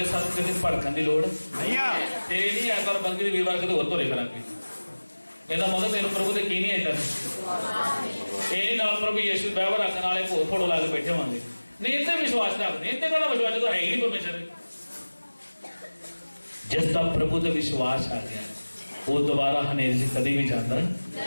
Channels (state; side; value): inverted; both; correlation -1.00